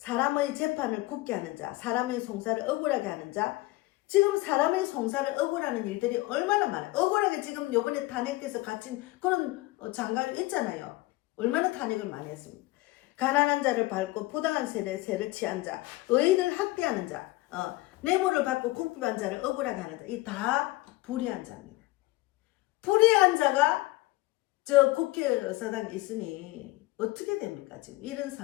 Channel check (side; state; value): right; quieter; 19.8 dB